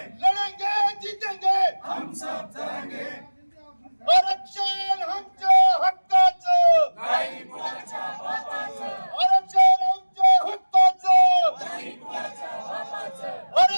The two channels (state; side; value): inverted; both; correlation -1.00